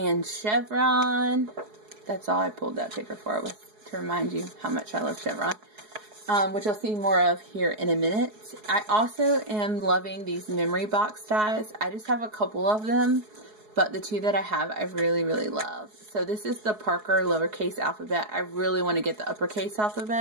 chevron, that's all I pulled that paper for, was to remind you how much I love chevron, which you'll see more of here in a minute. I also am loving these memory box dies. I just have a couple of them, but the two that I have, I really, really love. So this is the Parker lowercase alphabet. I really want to get the uppercase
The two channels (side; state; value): left; late; 4.7 ms